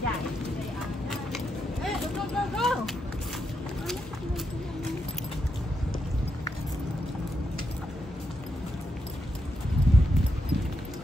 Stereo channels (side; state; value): both; normal; correlation 0.83